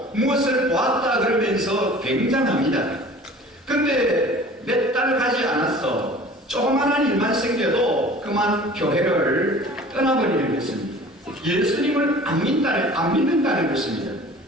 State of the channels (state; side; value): normal; both; correlation 0.45